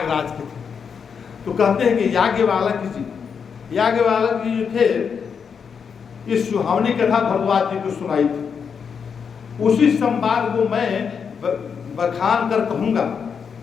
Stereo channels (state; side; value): quieter; right; 6.5 dB